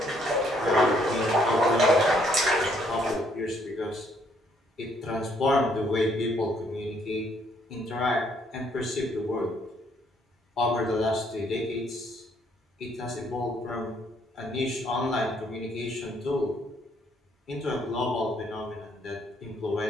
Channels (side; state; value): both; normal; correlation 0.68